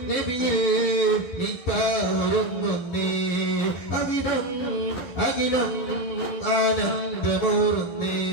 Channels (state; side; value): late; right; 11 ms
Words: നബിയിൽ നിത്താവരുന്നേ അവിടം അഖിലം ആനന്ദമൂറുന്നേ